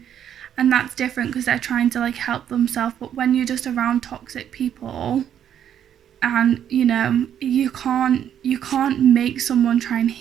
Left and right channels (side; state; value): left; quieter; 9.6 dB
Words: and that's different because they're trying to like help themselves. But when you're just around toxic people, and you know, you can't make someone try and